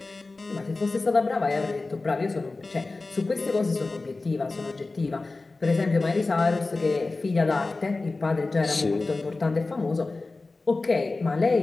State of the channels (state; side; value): quieter; right; 3.5 dB